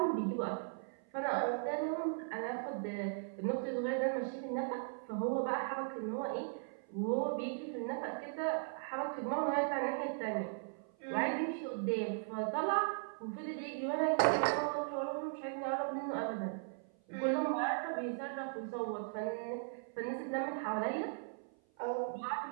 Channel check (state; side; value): silent; left; 52 dB below the other